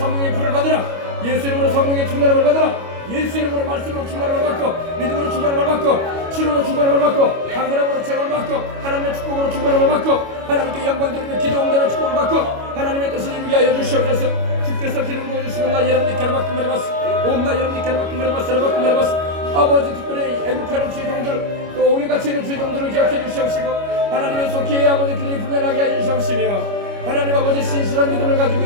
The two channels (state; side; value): late; left; 25 ms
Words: 불을 받으라. 예수 이름으로 성령의 충만함을 받으라. 예수 이름으로 말씀으로 충만함을 받고 믿음으로 충만함을 받고 치료로 충만함을 받고 강건함으로 체험을 받고 하나님의 축복으로 충만함을 받고 하나님께 영광 돌리며 기도 응답의 축복을 받고 하나님의 뜻을 이루게 하여 주시옵소서. 주께서 기름 부어주시고 나 여러분들께로 맡긴 말해봤어. 나 여러분들께로 맡긴 말해봤어. 아버지 특별히 애국하는 주의 종들 또 오해같이 있는 주의 종들을 기억해 주시옵시고 하나님의 속히 아버지 그들이 분별하게 해 주시옵시며 하나님 아버지 신실한 믿음을 가지고